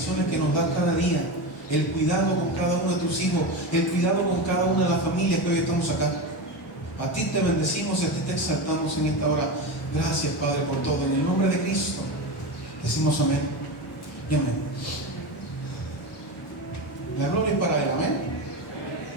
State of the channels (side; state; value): both; normal; correlation 0.20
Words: que nos das cada día, el cuidado con cada uno de tus hijos, el cuidado con cada una de las familias que hoy estamos acá. A ti te bendecimos y a ti te exaltamos en esta hora. Gracias, Padre, por todo. En el nombre de Cristo decimos amén y amén. La gloria es para Él, amén.